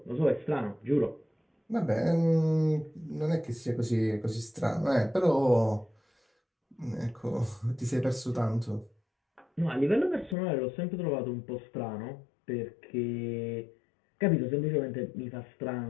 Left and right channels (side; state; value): right; drops out; at 10.4 s